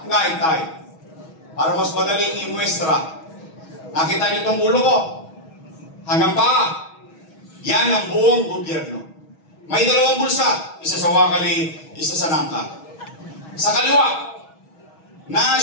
ngaitay. Para mas madaling imuestra. Nakita niyo itong ulo ko? Hanggang pa. Yan ang buong gobyerno. May dalawang bulsa. Isa sa wakali, isa sa nangka. Sa kaliwa,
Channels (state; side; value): late; right; 6.2 ms